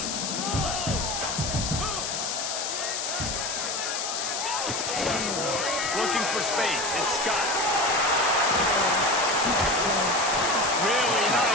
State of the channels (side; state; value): left; noise; hiss, 3 dB below the sound